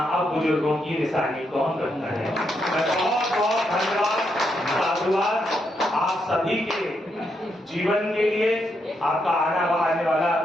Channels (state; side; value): normal; both; correlation 0.80